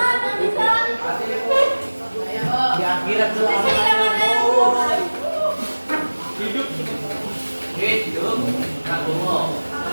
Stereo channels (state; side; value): inverted; both; correlation -1.00